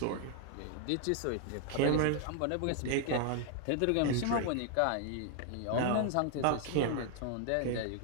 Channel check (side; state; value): both; different; correlation 0.00